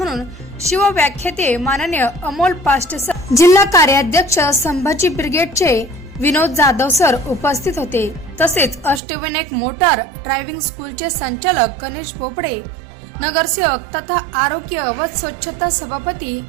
शिवव्याख्याते माननीय अमोल पाष्टे सर, जिल्हा कार्याध्यक्ष संभाजी ब्रिगेडचे विनोद जाधव सर उपस्थित होते। तसेच अष्टविनायक मोटार ड्रायव्हिंग स्कूलचे संचालक गणेश बोपडे, नगरसेवक तथा आरोग्य व स्वच्छता सभापती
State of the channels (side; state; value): left; drops out; at 9.0 s